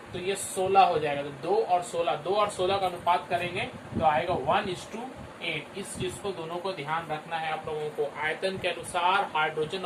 तो ये 16 हो जाएगा। तो 2 और 16 का अनुपात करेंगे तो आएगा 1:8। इस चीज को दोनों को ध्यान रखना है आप लोगों को। आयतन के अनुसार हाइड्रोजन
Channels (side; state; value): both; identical; correlation 1.00